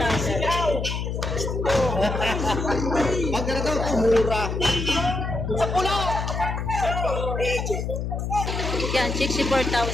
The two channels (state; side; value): noise; left; hum, 3 dB below the sound